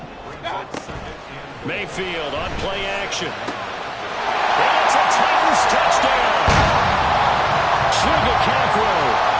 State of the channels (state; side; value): identical; both; correlation 1.00